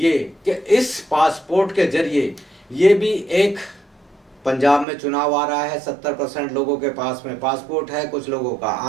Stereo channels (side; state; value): left; drops out; at 4.9 s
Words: कि इस पासपोर्ट के जरिए ये भी एक, पंजाब में चुनाव आ रहा है, 70% लोगों के पास में पासपोर्ट है, कुछ लोगों का